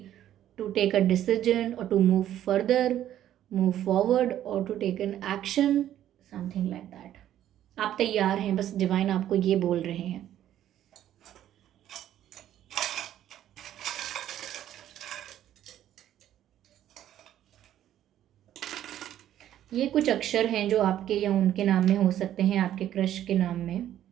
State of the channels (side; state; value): left; quieter; 11.7 dB